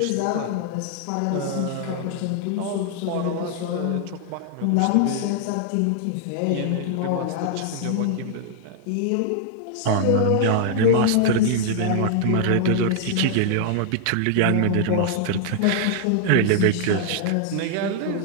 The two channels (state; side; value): different; both; correlation -0.01